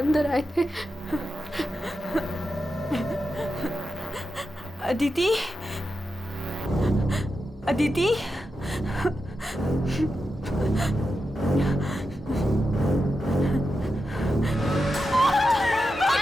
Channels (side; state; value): both; normal; correlation 0.89